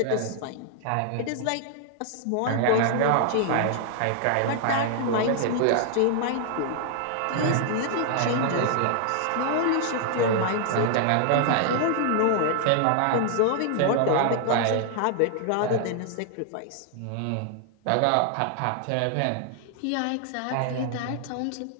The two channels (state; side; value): different; both; correlation 0.00